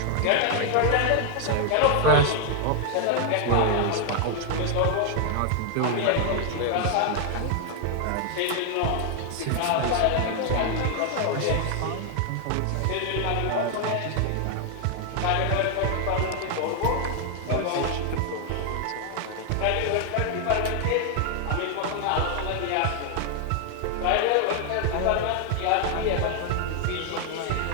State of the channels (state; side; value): different; both; correlation 0.00